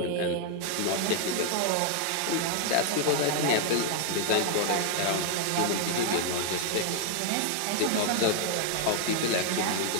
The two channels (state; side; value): different; both; correlation 0.00